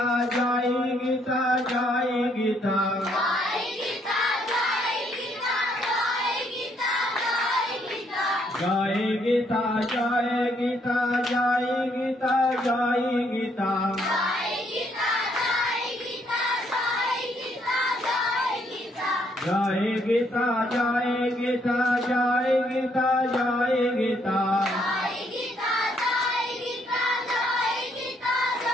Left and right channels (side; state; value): both; normal; correlation 0.71